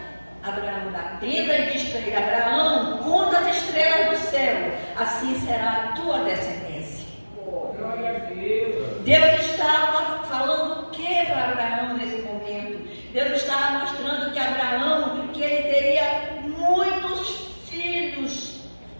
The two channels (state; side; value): inverted; both; correlation -1.00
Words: Abraão da tenda e diz para ele: Abraão, conta as estrelas do céu, assim será a tua descendência. Deus estava falando o que para Abraão nesse momento? Deus estava mostrando que Abraão, que ele teria muitos filhos,